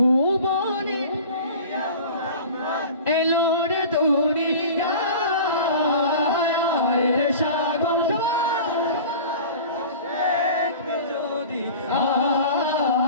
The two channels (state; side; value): inverted; both; correlation -0.39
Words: এলো রে দুনিয়া।